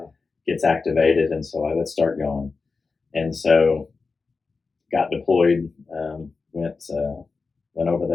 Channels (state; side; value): quieter; right; 4.3 dB